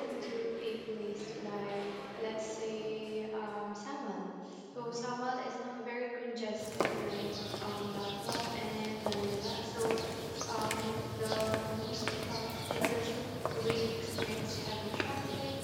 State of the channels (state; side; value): identical; both; correlation 1.00